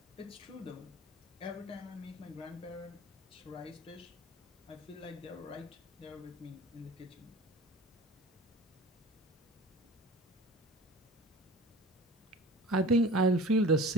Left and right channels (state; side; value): normal; both; correlation 0.40